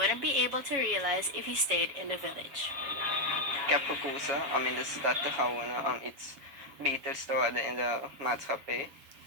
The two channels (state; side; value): late; left; 7.2 ms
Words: be able to realize if he stayed in the village. Ik heb gekozen om in de stad te gaan wonen om iets beters te worden in de maatschappij.